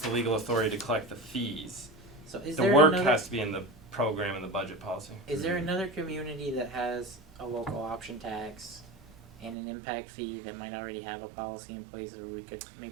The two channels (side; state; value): left; drops out; at 9.6 s